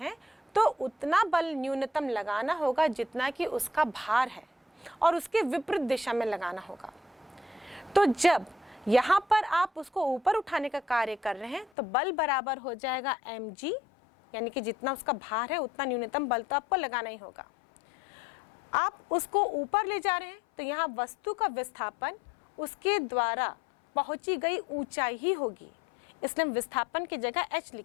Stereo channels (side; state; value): right; drops out; at 11.7 s